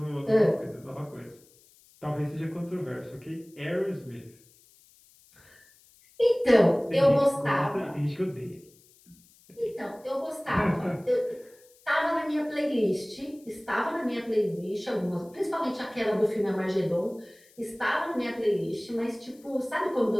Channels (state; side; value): noise; left; hiss, 28 dB below the sound